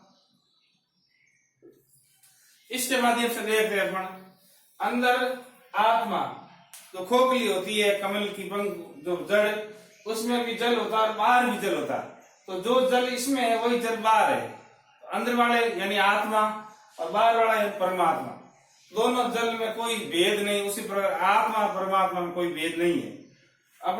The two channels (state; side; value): identical; both; correlation 1.00